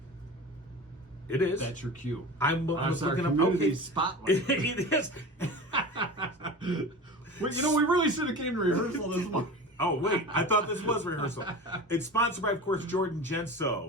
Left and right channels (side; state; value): both; normal; correlation 0.32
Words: It is. That's your cue. I was That's our looking up. community Okay, spotlight. it is. Well, we really should have came to rehearsal this morning. Oh wait, I thought this was rehearsal. It's sponsored by, of course, Jordan